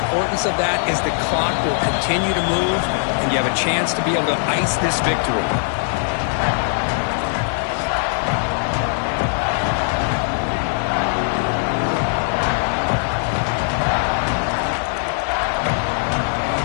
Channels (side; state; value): right; silent; digital silence